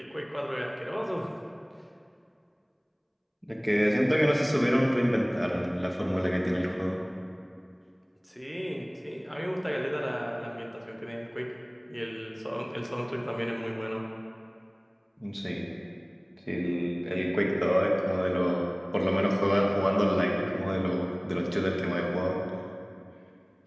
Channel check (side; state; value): both; identical; correlation 1.00